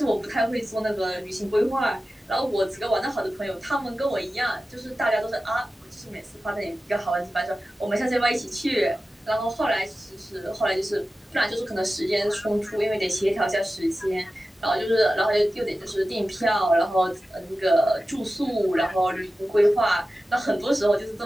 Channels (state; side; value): normal; both; correlation 0.94